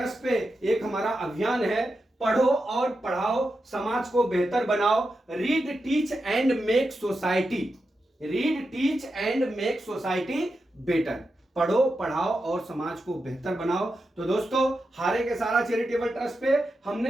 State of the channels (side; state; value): both; normal; correlation 0.89